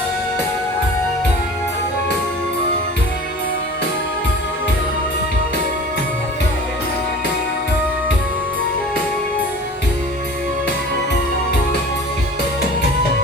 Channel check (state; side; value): normal; both; correlation 0.41